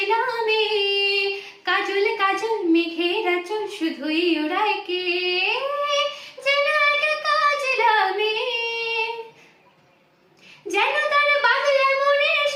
নামে কাজল কাজল মেঘের আঁচল শুধুই ওড়ায়।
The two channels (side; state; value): both; identical; correlation 1.00